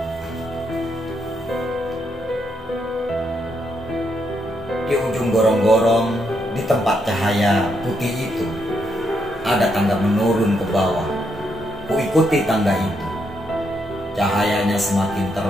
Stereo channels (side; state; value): both; normal; correlation 0.78